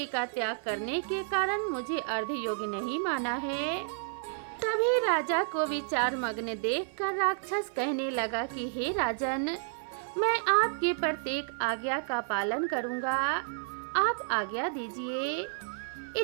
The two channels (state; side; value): silent; left; 57 dB below the other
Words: का त्याग करने के कारण मुझे अर्धयोगी नहीं माना है। तभी राजा को विचार मग्न देखकर राक्षस कहने लगा कि हे राजन, मैं आपकी प्रत्येक आज्ञा का पालन करूंगा, आप आज्ञा दीजिए।